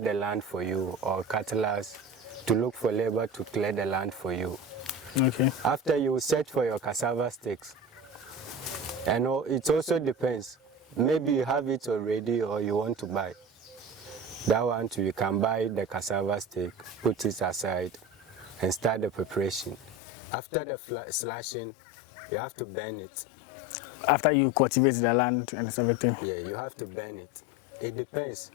land for you, or cutlass to look for labor to clear the land for you. Okay. After you search for your cassava sticks, and it also depends. Maybe you have it already or you want to buy. That one too, you can buy the cassava stick, put it aside, and start the preparation. After the slashing, you have to burn it. After you cultivate the land and everything? Yeah, you have to burn it. It depends.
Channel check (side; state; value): right; drops out; at 20.0 s